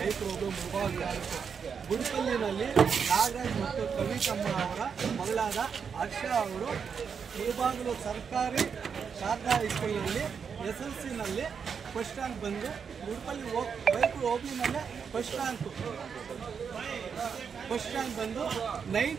ರೋಗ ಮುಭಾಗ. ಗುಡಿಪಲ್ಲಿನಲ್ಲಿ ನಾಗರಾಜ್ ಮತ್ತು ಕವಿತಮ್ಮ ಅವರ ಮಗಳಾದ ಹರ್ಷ ಅವರು ಮುಳಬಾಗಿಲು ಸರ್ಕಾರಿ ಶಾರದಾ ಹೈಸ್ಕೂಲ್ನಲ್ಲಿ SLCನಲ್ಲಿ ಫಸ್ಟ್ ರ್ಯಾಂಕ್ ಬಂದು ಗುಡಿಪಲ್ಲಿ ಬೈಕ್ ಹೋಗ್ಲಿನಲ್ಲೇ ಫಸ್ಟ್ ರ್ಯಾಂಕ್ ಬಂದು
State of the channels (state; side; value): quieter; left; 6.5 dB